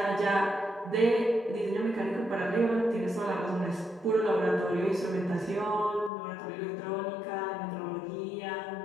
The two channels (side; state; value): right; drops out; at 6.1 s